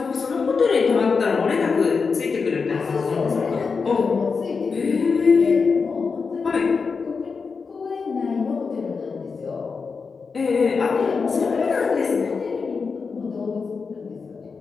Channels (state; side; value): quieter; right; 5.0 dB